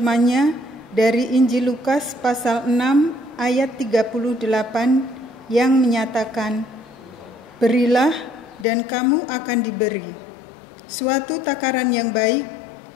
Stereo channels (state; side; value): drops out; right; at 8.7 s